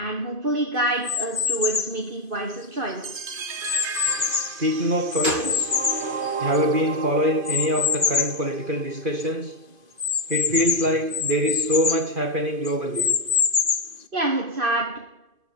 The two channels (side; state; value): left; late; 2.5 ms